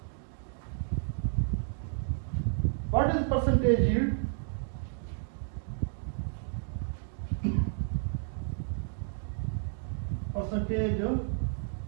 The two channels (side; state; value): left; silent; digital silence